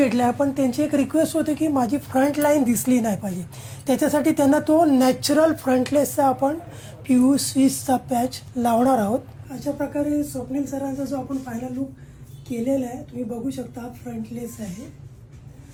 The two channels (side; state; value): both; identical; correlation 1.00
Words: आहे. पण त्यांची एक रिक्वेस्ट होते की माझी फ्रंट लाईन दिसली नाही पाहिजे, त्याच्यासाठी त्यांना तो नॅचरल फ्रंटलेसचा आपण PU-स्विसचा पॅच लावणार आहोत. अशा प्रकारे स्वप्नील सरांचा जो आपण फायनल लुक केलेला आहे तुम्ही बघू शकता. फ्रंटलेस आहे